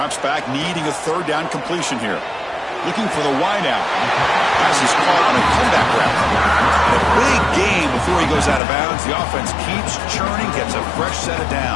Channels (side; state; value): right; drops out; at 8.6 s